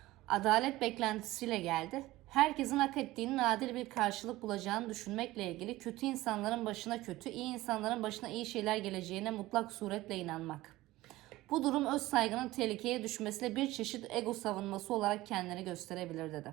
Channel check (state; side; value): quieter; left; 17.7 dB